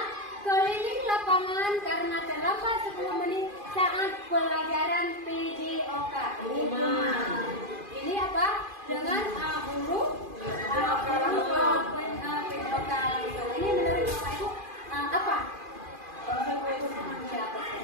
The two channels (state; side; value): late; left; 2.4 ms